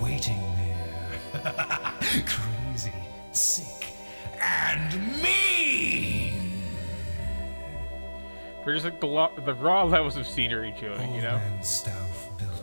waiting there, crazy, sick, and mean. For just like the raw levels of scenery to it, Old you know. man Stauff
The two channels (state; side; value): inverted; both; correlation -1.00